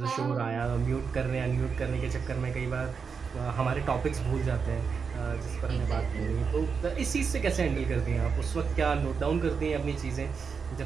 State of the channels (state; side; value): quieter; left; 5.7 dB